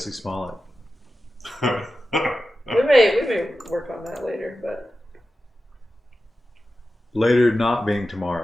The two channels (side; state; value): both; normal; correlation 0.93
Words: Smollett. We may work on that later, but Later not being